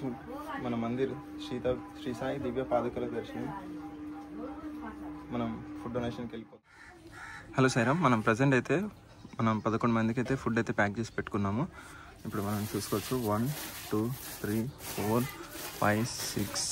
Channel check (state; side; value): identical; both; correlation 1.00